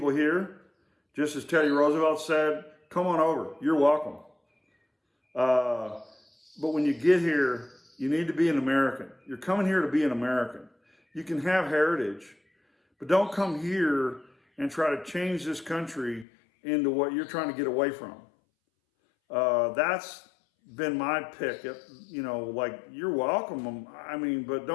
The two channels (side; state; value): right; drops out; at 16.2 s